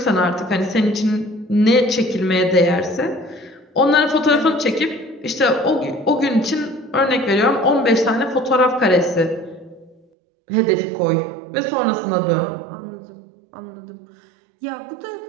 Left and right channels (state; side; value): drops out; left; at 10.0 s